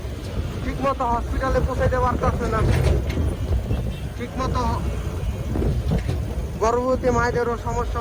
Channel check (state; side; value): identical; both; correlation 1.00